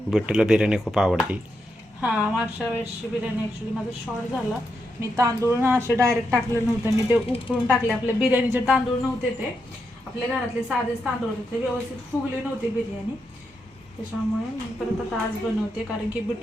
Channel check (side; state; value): both; normal; correlation 0.83